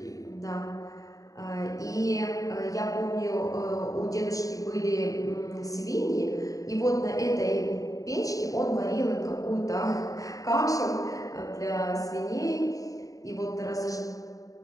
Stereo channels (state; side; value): late; right; 0.17 ms